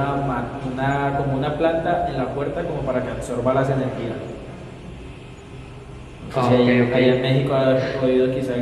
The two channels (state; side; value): identical; both; correlation 1.00